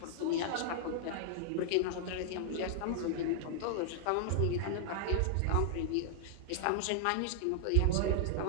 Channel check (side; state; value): both; different; correlation -0.01